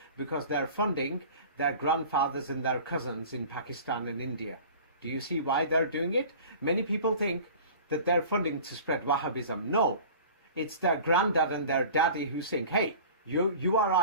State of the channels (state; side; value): inverted; both; correlation -0.41